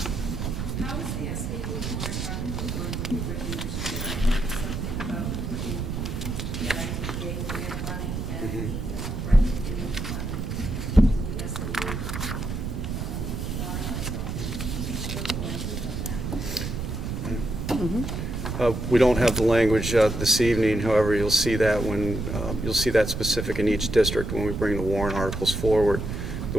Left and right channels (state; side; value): noise; right; rumble, 4 dB below the sound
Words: How is the SAU warrant article going to be written this year? I heard something about putting the ITDA grant money and the Bright Beginnings money into the SAU warrant article. What's the language on that? We don't have the language this evening, however, you'll see that you'll see that specific in each district when we bring the warrant articles forward. The